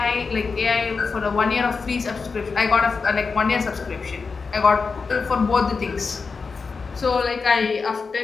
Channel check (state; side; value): quieter; right; 4.8 dB